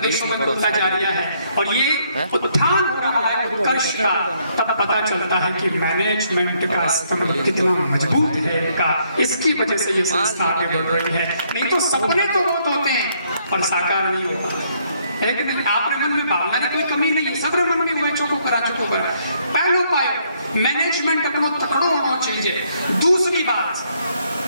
में खुलता जा रहा है। और ये उत्थान हो रहा है उत्कर्ष का, तब पता चलता है कि मैनेजमेंट का स्तंभ कितना मजबूत है इनका, इसकी वजह से ये संस्था आगे बढ़ रही है। नहीं तो सपने तो बहुत होते हैं पर साकार नहीं होता है कि नहीं। आपके मन में भावना की कोई कमी नहीं है, सबरे मन में हुआ चौको करा चुको कर। पहलो पायो मैनेजमेंट अपनो तकड़ो होना चाहिए। दूसरी बात,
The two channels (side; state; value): both; inverted; correlation -0.70